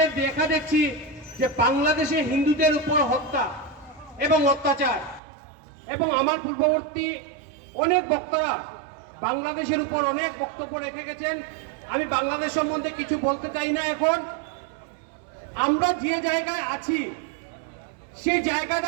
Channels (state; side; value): drops out; left; at 5.2 s